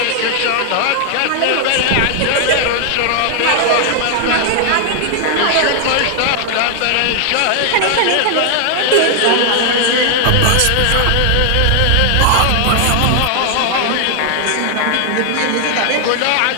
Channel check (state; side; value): different; both; correlation 0.00